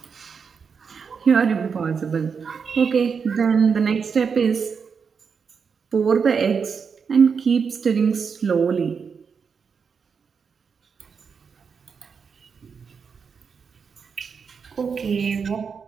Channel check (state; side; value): quieter; left; 6.0 dB